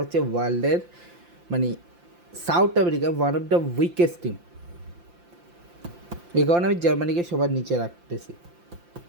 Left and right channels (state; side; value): late; left; 5.8 ms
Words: হচ্ছে ওয়ার্ল্ডের মানে south America one of the weakest team. এই কারণে আমি জার্মানিকে সবার নিচে